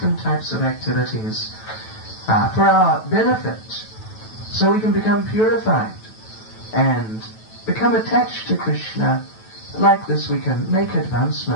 types of activities for our benefit, so we can become purified and become attached to Krishna. Like this we can make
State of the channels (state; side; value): late; right; 9.2 ms